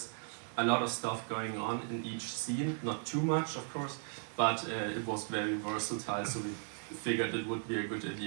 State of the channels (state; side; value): silent; left; 53 dB below the other